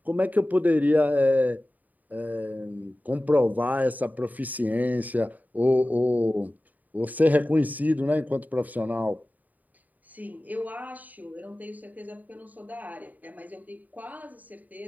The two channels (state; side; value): late; left; 0.079 ms